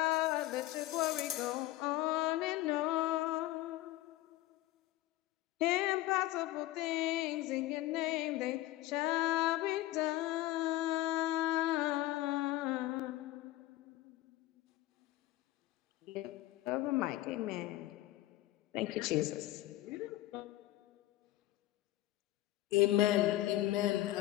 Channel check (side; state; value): right; quieter; 16.1 dB